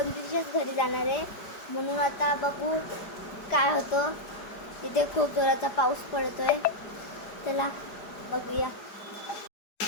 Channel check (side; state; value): right; late; 5.0 ms